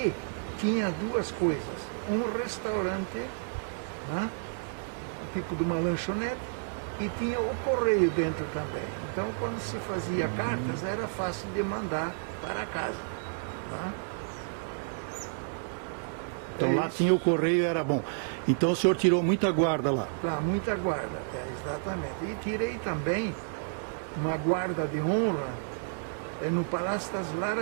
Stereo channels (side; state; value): left; silent; digital silence